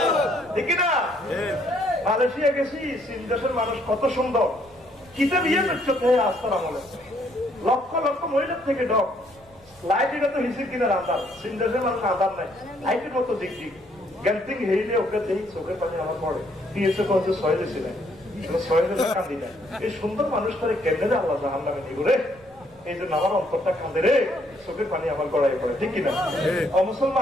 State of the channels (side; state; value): right; noise; rumble, 28 dB below the sound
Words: ঠিক না? মালয়েশিয়া গেছি, চীন দেশের মানুষ কত সুন্দর, কিতে বিয়ে করছে আস্তার আমলে, লক্ষ লক্ষ মহিলার থেকে ডক লাইট, এটা তো হিসেব কিনা আধার, চীন দেশের মানুষ আধার নাই, লাইটের মতো দেখছি গ্যান্টিং হেইলে ওকে দেখি চোখের পানি আমার পড়ে, দিয়েছে কত ছয় দিয়েছিলেন, কান্দি না। এই সুন্দর মানুষটারে কেন্দ্রে আল্লাহ জাহান নামে নিব রে, এই জন্য আমার অন্তরটা কাঁদে রে, চোখের পানি আমার গড়াই পড়ে, ঠিক কিনা?